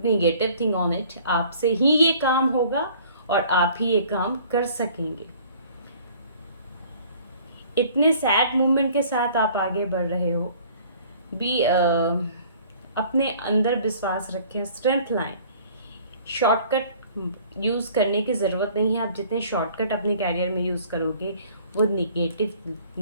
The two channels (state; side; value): inverted; both; correlation -0.53